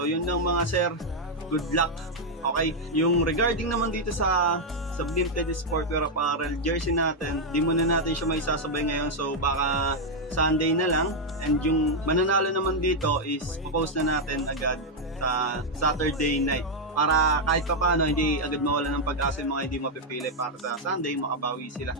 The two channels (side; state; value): both; normal; correlation -0.01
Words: yun lang mga sir, good luck. Okay, yung regarding naman dito sa Sublimed Sportwear Apparel jersey natin, di muna natin siya may sasabay ngayon, so baka Sunday na lang. And yung mananalo naman dito is popost na natin agad sa Saturday night para kahit pa paano hindi agad mawala ng pag-asa yung mga hindi mapipili para sa Sunday makabawi sila.